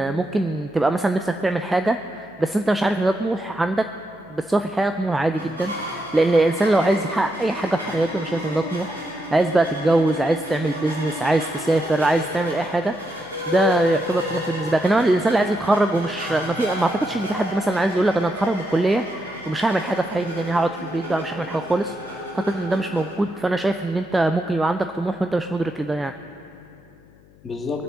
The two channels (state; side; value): noise; left; hum, 28 dB below the sound